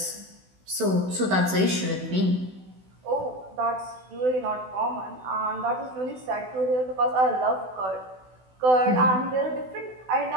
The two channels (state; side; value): late; left; 16 ms